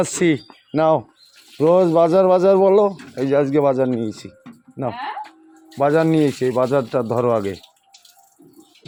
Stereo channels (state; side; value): identical; both; correlation 1.00